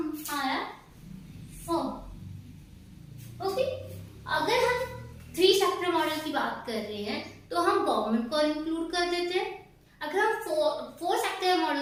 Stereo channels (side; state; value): both; identical; correlation 1.00